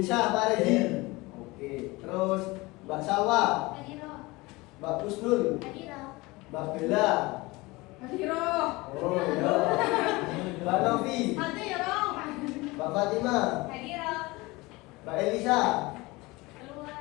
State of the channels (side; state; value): right; quieter; 22.5 dB